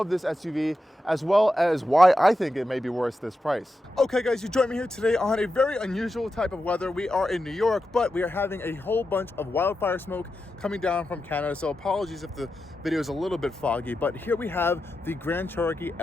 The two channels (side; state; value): both; normal; correlation 0.89